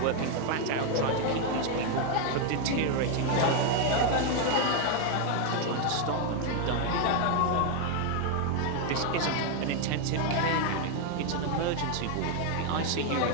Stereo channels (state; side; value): different; both; correlation 0.01